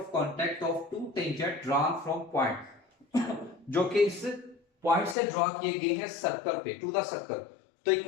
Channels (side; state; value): right; drops out; at 5.2 s